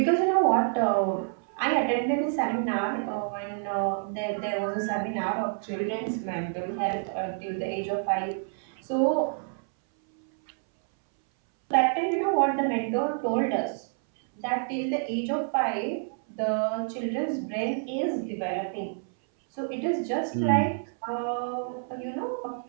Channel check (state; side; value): silent; left; 59 dB below the other